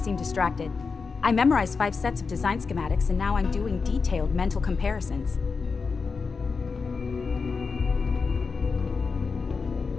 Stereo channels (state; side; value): quieter; right; 4.9 dB